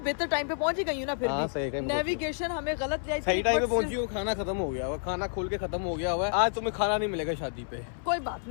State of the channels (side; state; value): right; silent; 58 dB below the other